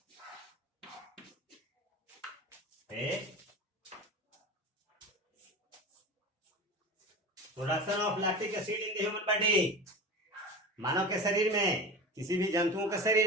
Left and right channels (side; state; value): both; normal; correlation 0.30